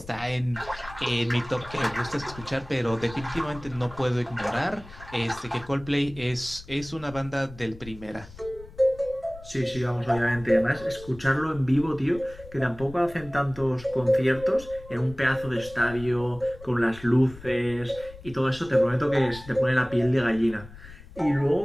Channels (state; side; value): noise; left; rumble, 17 dB below the sound